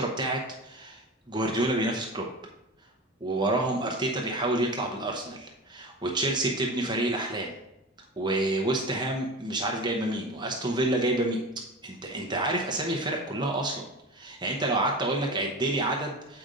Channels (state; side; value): normal; both; correlation 0.30